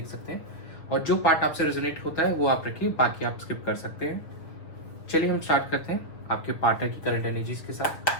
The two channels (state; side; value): late; right; 6.4 ms